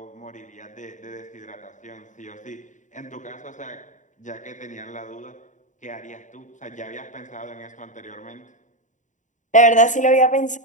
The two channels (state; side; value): late; right; 0.36 ms